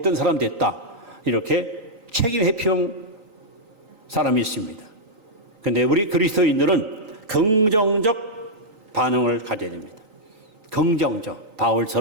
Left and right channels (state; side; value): late; left; 3.9 ms